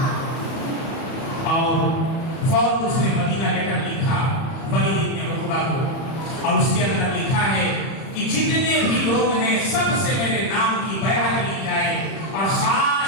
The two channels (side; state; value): right; late; 31 ms